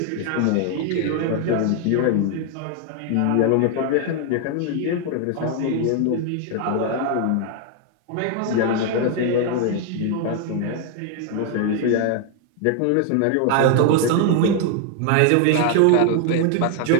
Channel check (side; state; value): both; different; correlation 0.00